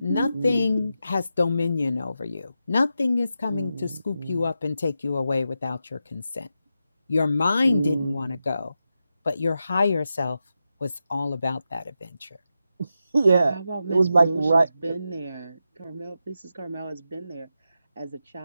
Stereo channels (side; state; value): both; inverted; correlation -0.88